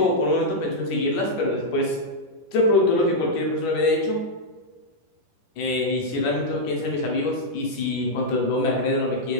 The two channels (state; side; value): late; right; 10 ms